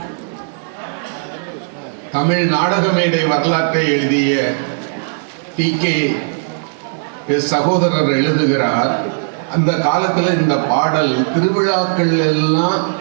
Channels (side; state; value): left; silent; 56 dB below the other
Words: தமிழ் நாடக மேடை வரலாற்றை எழுதிய டி.கே. சகோதரர் எழுதுகிறார், அந்த காலத்துல இந்த பாடல் திருவிழாக்கள் எல்லாம்